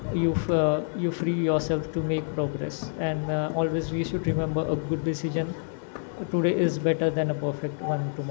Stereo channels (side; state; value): right; silent; digital silence